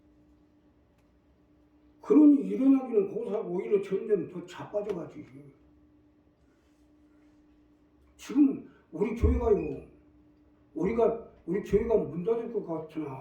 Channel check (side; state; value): both; identical; correlation 1.00